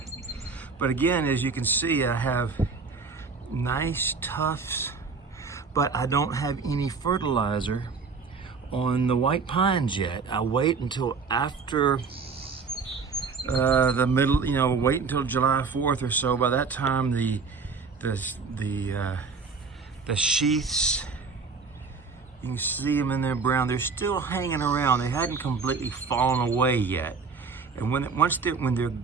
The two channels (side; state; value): left; quieter; 4.9 dB